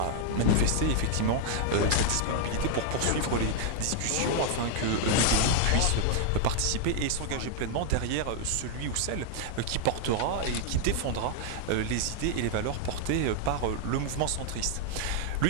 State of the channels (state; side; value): different; both; correlation 0.00